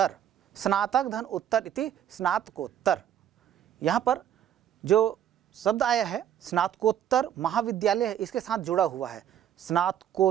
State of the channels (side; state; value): left; quieter; 10.1 dB